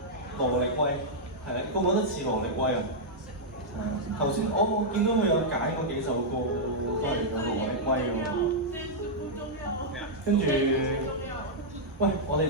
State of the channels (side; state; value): both; normal; correlation -0.07